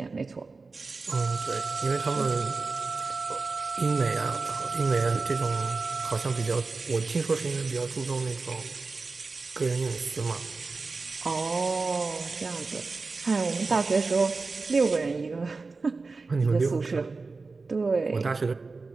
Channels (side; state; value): left; quieter; 4.0 dB